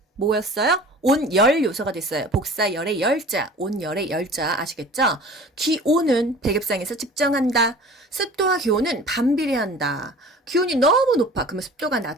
뭐였어요? 온열 요소가 됐어요. 복사열의 열자, 온열의 열자 아시겠죠? 기온은 백엽상에서 측정한다. 습도와 기온은 반비례한다. 기온이 너무 높아. 그러면 습도가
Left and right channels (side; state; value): both; normal; correlation 0.43